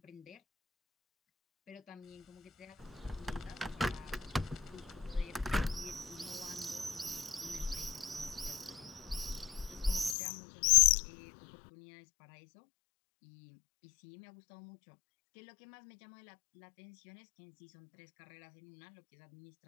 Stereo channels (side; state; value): right; drops out; at 10.2 s